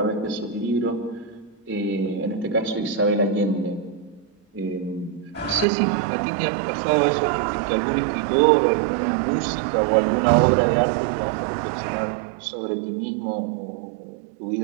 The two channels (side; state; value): left; drops out; at 5.7 s